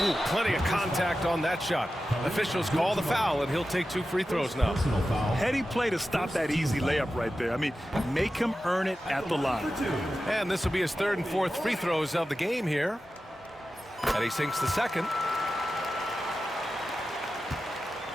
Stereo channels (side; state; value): both; normal; correlation 0.93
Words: Ooh, plenty of contact on that shot. Officials call the foul, and he'll take 2 free throws now. Heady play to stop that easy layup right there. I mean, make him earn it at the line. And this will be his 3rd and 4th free throws of the game here. And he sinks the second.